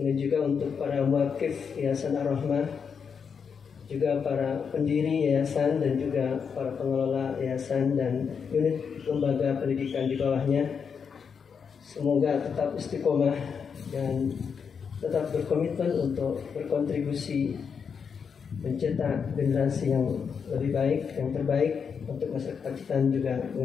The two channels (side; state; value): right; quieter; 6.4 dB